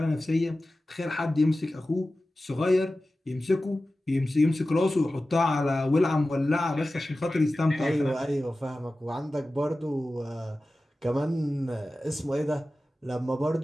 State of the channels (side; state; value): both; normal; correlation 0.95